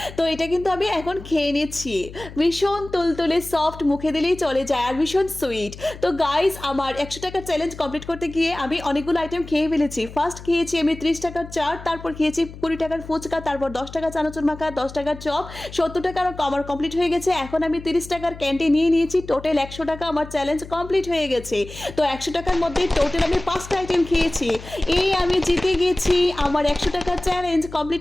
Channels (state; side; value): noise; left; hum, 15 dB below the sound